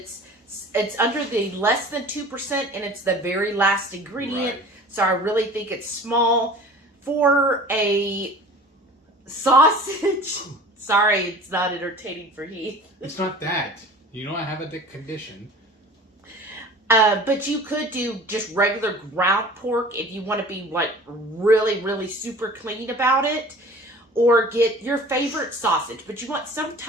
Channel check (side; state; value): both; normal; correlation 0.43